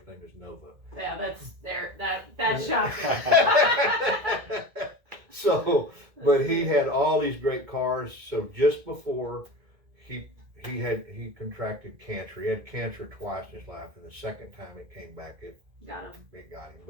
name is Nova. Yeah, that's shocking. So, but he had all these great cars. So just before he contracted cancer, he had cancer twice in his life, and the second time it came back, it got him.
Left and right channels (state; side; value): late; left; 2.1 ms